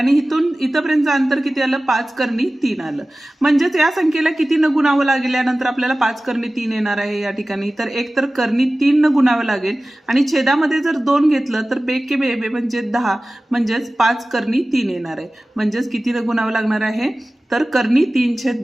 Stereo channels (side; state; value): both; normal; correlation 0.97